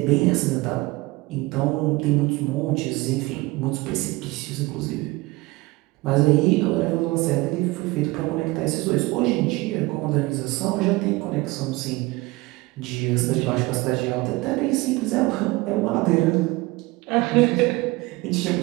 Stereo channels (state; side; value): quieter; left; 21.8 dB